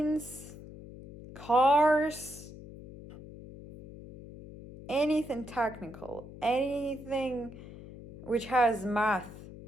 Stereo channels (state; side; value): noise; left; hum, 15 dB below the sound